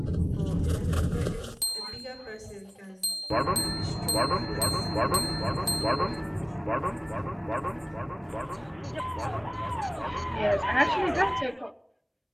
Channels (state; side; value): identical; both; correlation 1.00